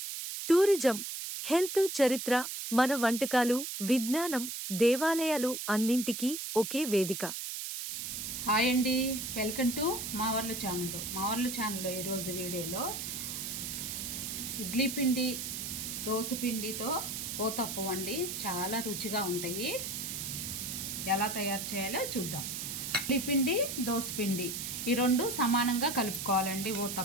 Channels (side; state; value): right; noise; hiss, 5 dB below the sound